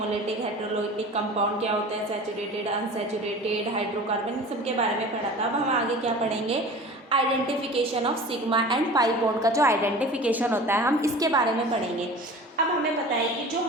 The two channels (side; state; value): both; normal; correlation 0.39